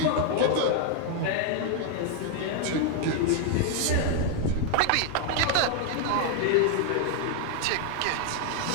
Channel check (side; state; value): both; different; correlation 0.00